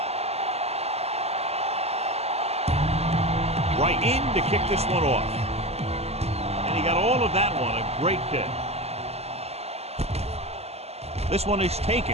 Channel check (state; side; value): late; left; 0.30 ms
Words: Right in to kick this one off. And he got all of that one. A great kick. This one is